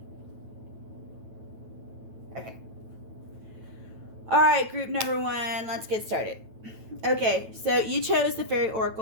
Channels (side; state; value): left; late; 9.1 ms